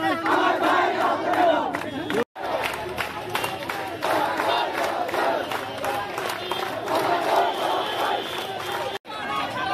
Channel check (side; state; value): both; identical; correlation 1.00